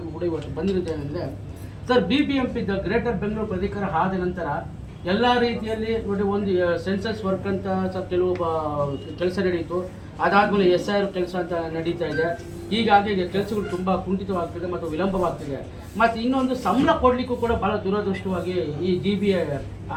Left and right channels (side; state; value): both; identical; correlation 1.00